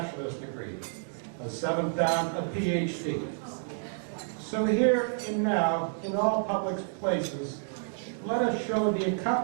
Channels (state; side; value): silent; left; digital silence